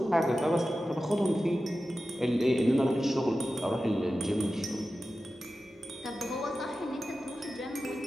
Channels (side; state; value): both; normal; correlation 0.94